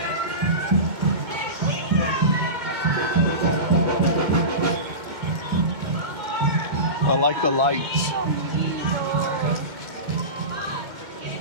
I like the lights.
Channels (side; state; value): left; late; 2.1 ms